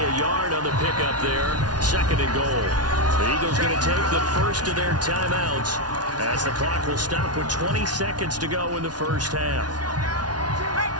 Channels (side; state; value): left; late; 0.69 ms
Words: a yard on the pickup there. 2nd and goal. The Eagles going to take the first of their timeouts as the clock will stop with 20 seconds to go in the first half.